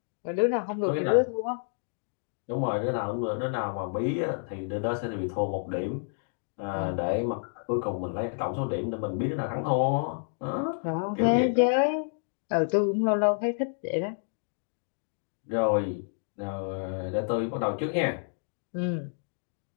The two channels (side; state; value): right; silent; digital silence